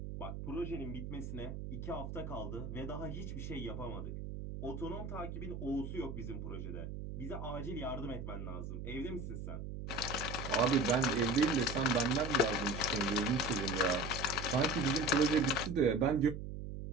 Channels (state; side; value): noise; right; hum, 7 dB below the sound